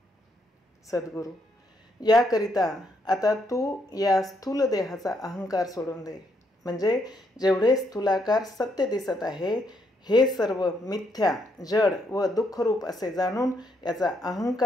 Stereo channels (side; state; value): both; normal; correlation 0.75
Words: सद्गुरू: याकरिता आता तू या स्थूल देहाचा अहंकार सोडून दे. म्हणजे जेवढे स्थूलाकार सत्य दिसत आहे हे सर्व मिथ्या, जड व दुःखरूप असे जाणून याचा